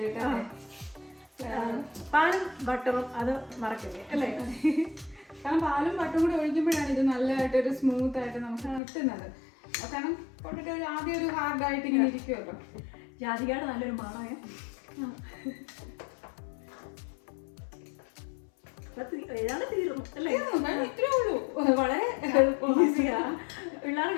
പാലും ബട്ടറും അത് മറക്കില്ലേ അല്ലേ? കാരണം പാലും ബട്ടറും കൂടി ഒഴിക്കുമ്പോഴാണ് ഇത് നല്ലതായിട്ടൊരു സ്മൂത്ത് ആയിട്ട് നമുക്ക് കിട്ടുന്നത്. കാരണം പൊട്ടറ്റോ ആദ്യം ഒരു ഹാർഡായിട്ട് ഇങ്ങനെ ഇരിക്കുമല്ലോ. ജാതികയുടെ നല്ലൊരു മണമേ. ഏതാണ് തീർന്നു അല്ലേ? ഇത്രേ ഉള്ളൂ, വളരെ ഈസിയാ,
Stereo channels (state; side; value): drops out; right; at 8.8 s